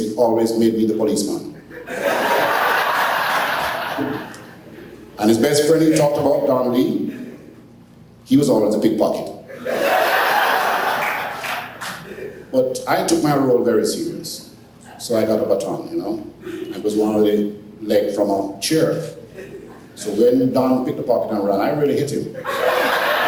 always made me the policeman. And his best friend he talked about, Don Lee, he was always a pickpocket. But I took my role very serious. So I got a baton, I was one of the leg from a chair. So when Don picked the pocket and ran, I really hit him.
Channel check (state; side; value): identical; both; correlation 1.00